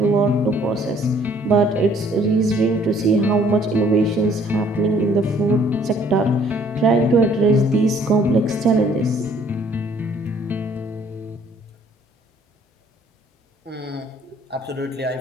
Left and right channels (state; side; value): normal; both; correlation 0.60